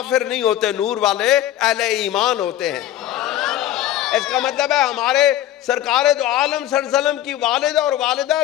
نہیں ہوتے، نور والے اہل ایمان ہوتے ہیں۔ اس کا مطلب ہے ہمارے سرکار دو عالم صلی اللہ علیہ وسلم کی والدہ اور والدہ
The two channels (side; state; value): right; quieter; 12.6 dB